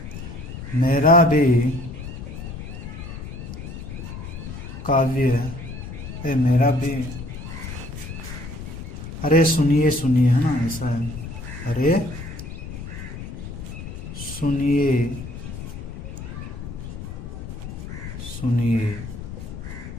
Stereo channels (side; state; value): left; noise; rumble, 9 dB below the sound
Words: मेरा भी काव्य, मेरा भी, अरे सुनिए सुनिए, है ना, ऐसा है। अरे सुनिए सुनिए